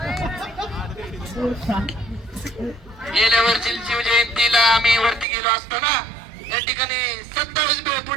गेल्या वर्षी शिवजयंतीला आम्ही वरती गेलो असताना या ठिकाणी 27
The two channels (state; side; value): drops out; left; at 5.2 s